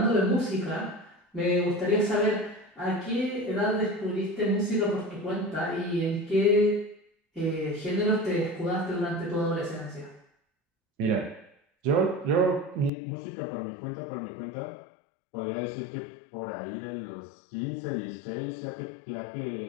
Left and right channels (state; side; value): drops out; right; at 12.9 s